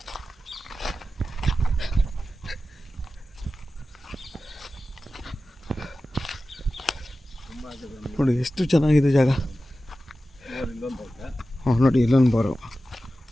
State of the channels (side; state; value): both; normal; correlation 0.94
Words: ನೋಡಿ ಎಷ್ಟು ಚೆನ್ನಾಗಿದೆ ಜಾಗ. ಇಲ್ಲೊಂದು ಐತೆ, ಹಾಂ ನೋಡಿ ಇಲ್ಲೊಂದು ಬಾರು.